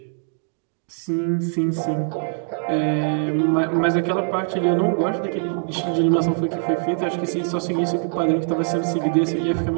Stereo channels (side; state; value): left; silent; digital silence